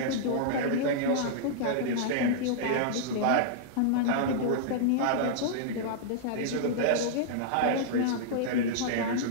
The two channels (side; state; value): both; different; correlation -0.02